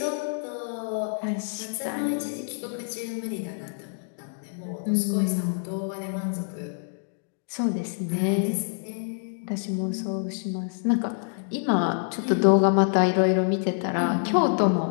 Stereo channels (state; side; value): silent; right; digital silence